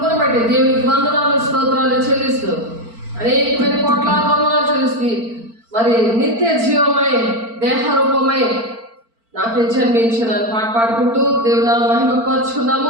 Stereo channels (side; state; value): left; late; 4.4 ms